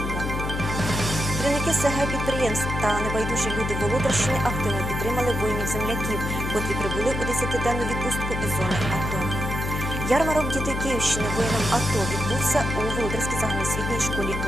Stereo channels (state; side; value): noise; left; hum, 3 dB below the sound